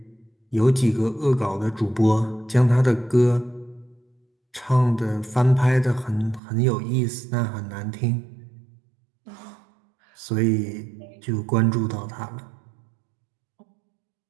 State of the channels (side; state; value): left; drops out; at 6.4 s